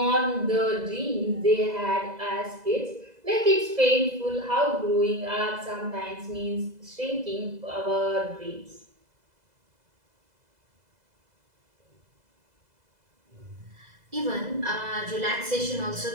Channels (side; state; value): left; late; 2.0 ms